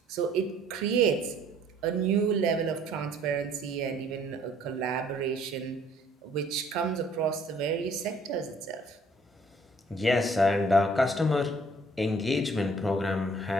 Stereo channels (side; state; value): both; normal; correlation 0.58